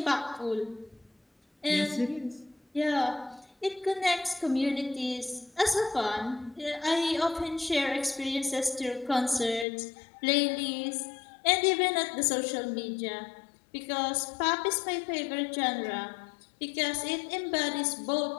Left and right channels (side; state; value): right; drops out; at 9.7 s